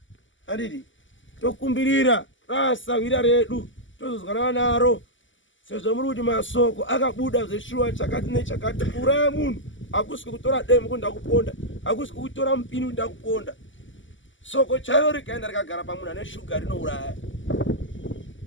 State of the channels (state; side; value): late; right; 0.55 ms